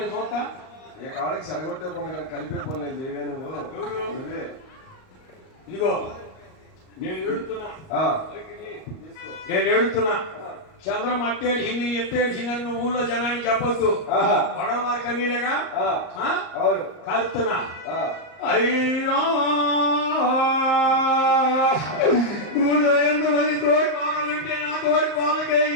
చూస్తా. ఏ కావాలకి చెడగొట్టే పనులు కానీ కలిపే పనులు నేను చేయవే నువ్వు. ఎవరు? నువ్వే. ఇదిగో నేను ఏడుతున్నా. ఆ, నేను ఏడుతున్నా. చంద్రం అట్టేడిసింది ఎట్టేడిసిందని నువ్వు ఊళ్ళో జనానికి చెప్పొద్దు. ఆహా, వడలమారి కన్నీలేగా ఆ, అవును. కలుపుతున్నా. ఆ, అయ్యో ఊళ్ళో ఎంతమంది తోడి కోడలుంటే నా తోడి కోళ్ళకే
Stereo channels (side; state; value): right; late; 38 ms